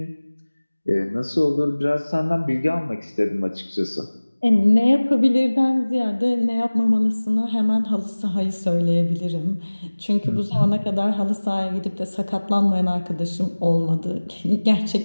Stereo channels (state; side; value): inverted; both; correlation -1.00